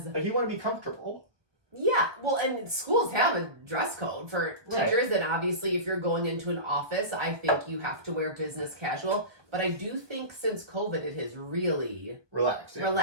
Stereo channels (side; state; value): left; late; 1.2 ms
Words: like you want to be comfortable. Yeah, well, and schools have a dress code for teachers, and obviously if you're going into an office, I think you have to wear business casual. But I do think since COVID, it has really